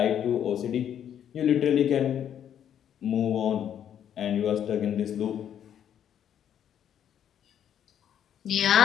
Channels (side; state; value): right; quieter; 9.6 dB